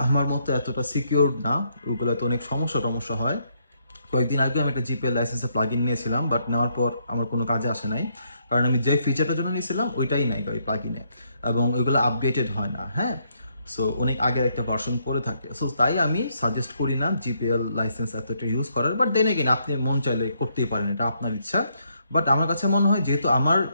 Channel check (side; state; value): both; inverted; correlation -0.74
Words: আমার মতো এতটা সিকিউর না, ওইগুলোতে অনেক সমস্যা হয়। কয়েকদিন আগে আমি একটা জিপিএল লাইসেন্সের প্লাগ ইন নিয়েছিলাম, বাট নেওয়ার পর আমার কোনো কাজে আসে নাই, কারণ আমি যে ফিচারটার জন্য নিয়েছিলাম ওইটাই নাই ওই প্লাগ ইনে, এবং ওইগুলো আপডেটেড হয় না। হ্যাঁ, সো অনেক আগের একটা ভার্সন পড়ে থাকে। সো তাই আমি সাজেস্ট করি না জিপিএল লাইসেন্স এতটা ইউজ করার। বাট দেন এগেইন আপনি মন চাইলে করতেই পারেন, এটা আপনার ইচ্ছা। বাট আমার কাছে মনে হয় যেহেতু আমার